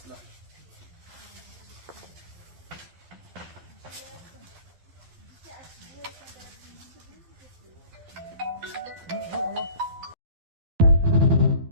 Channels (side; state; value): left; late; 12 ms